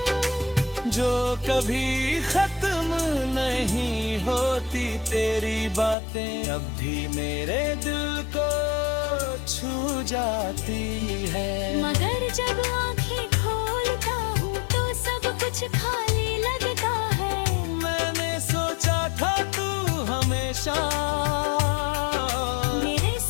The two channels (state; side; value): drops out; right; at 6.0 s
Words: होती तेरी बातें अब भी मेरे दिल को छू जाती है। मगर जब आंखें खोलता हूँ तो सब कुछ खाली लगता है। मैंने सोचा था तू हमेशा मेरे